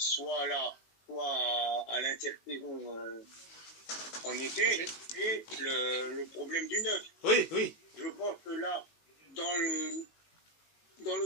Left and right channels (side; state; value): right; late; 19 ms